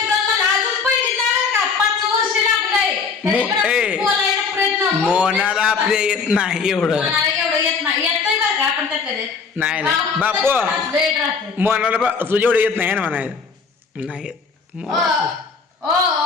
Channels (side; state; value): right; quieter; 5.3 dB